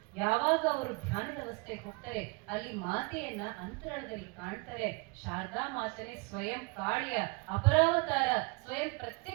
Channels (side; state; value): left; quieter; 28.9 dB